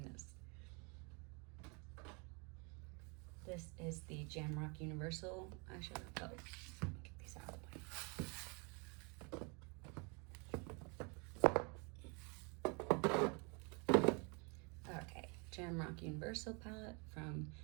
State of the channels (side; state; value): left; quieter; 32.3 dB